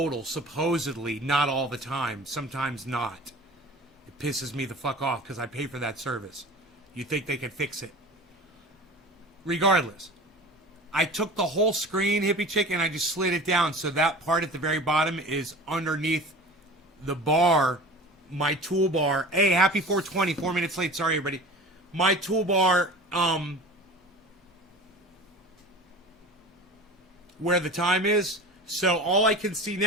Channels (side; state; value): both; normal; correlation 0.38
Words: supposedly, not all the time, sometimes not. It pisses me the fuck off because I pay for that service. You think they could fix it. Regardless, I took the whole screen, Hippie Chick, and I just slid it down so that part at the very bottom is underneath the bar, my toolbar. Hey, happy 420, 4 minutes late. Sorry, everybody. My toolbar, where the time is. So all I can see